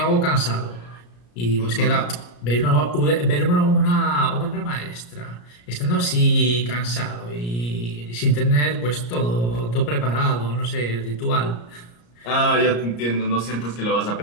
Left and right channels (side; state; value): right; late; 34 ms